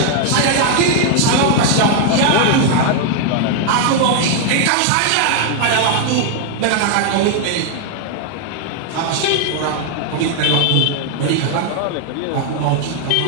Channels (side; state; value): both; different; correlation 0.00